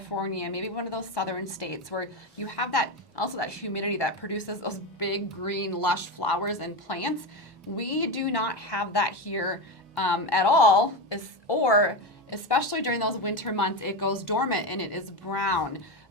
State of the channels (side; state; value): both; normal; correlation 0.16